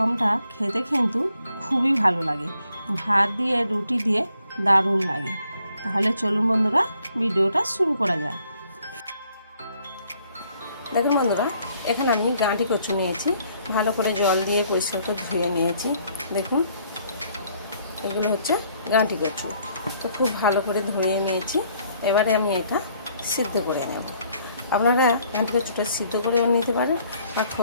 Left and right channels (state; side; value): inverted; both; correlation -0.66